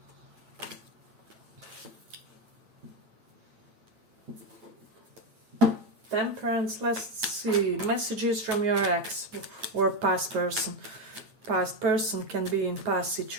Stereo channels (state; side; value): late; left; 9.3 ms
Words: Temperance, let's see, messages from your ex or past person. Past person can be in past